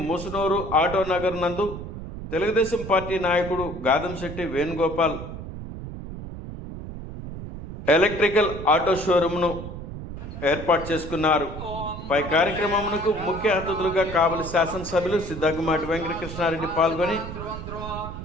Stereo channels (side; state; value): right; noise; rumble, 9 dB below the sound